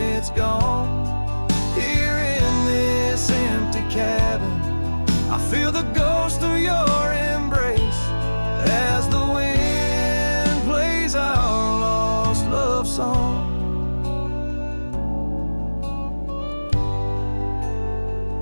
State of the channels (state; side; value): inverted; both; correlation -1.00